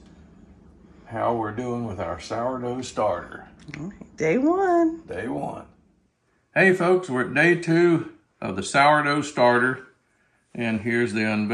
how we're doing with our sourdough starter. Day one. Day one. Hey folks, we're at day two of the sourdough starter, and here's the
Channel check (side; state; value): both; identical; correlation 1.00